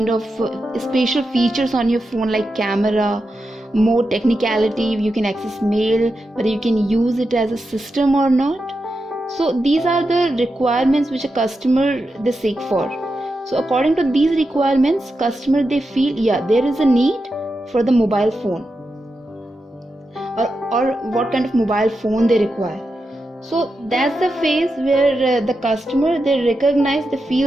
of special features on your phone like camera, more technicality, you can access mail, whether you can use it as a system or not. So these are the requirements which a customer they seek for. So according to these requirements, customer they feel there is a need for the mobile phone, or what kind of mobile phone they require. So that's the phase where the customer they recognize, they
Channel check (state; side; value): normal; both; correlation 0.88